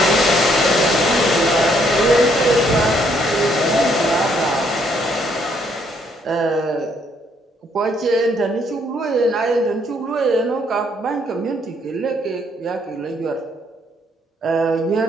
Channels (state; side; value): normal; both; correlation 0.69